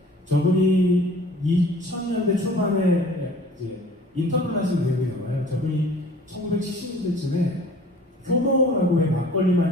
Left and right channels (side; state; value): both; normal; correlation 0.49